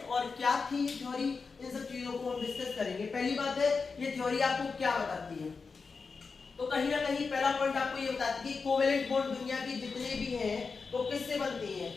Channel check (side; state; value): right; quieter; 4.8 dB